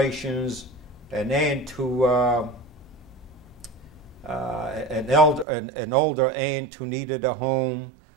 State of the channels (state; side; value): drops out; left; at 5.5 s